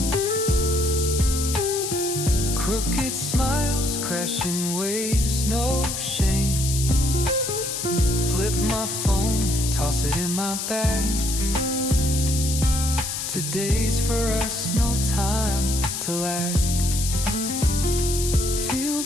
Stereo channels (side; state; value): left; noise; hiss, 4 dB below the sound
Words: Crooked smiles, crashing waves, no shame. Flip my phone, toss it in my bag. Today's for us, no time to lag. Feel